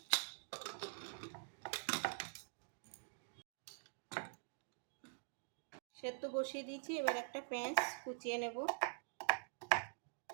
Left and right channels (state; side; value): silent; left; digital silence